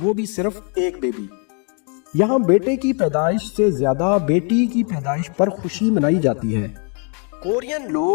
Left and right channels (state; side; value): quieter; right; 38.6 dB